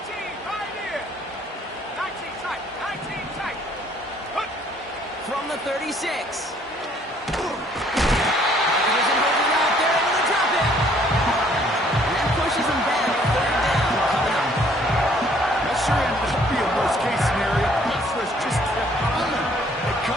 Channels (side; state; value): both; normal; correlation 0.62